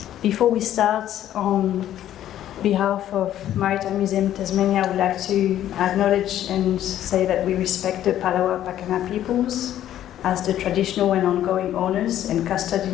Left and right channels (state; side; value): quieter; right; 11.9 dB